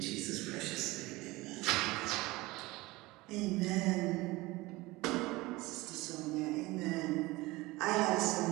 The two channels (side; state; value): left; quieter; 21.0 dB